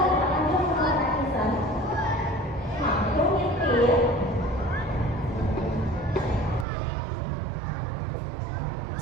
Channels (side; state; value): left; drops out; at 6.7 s